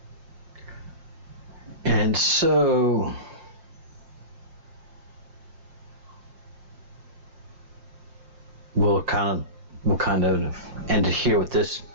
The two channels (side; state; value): left; late; 5.8 ms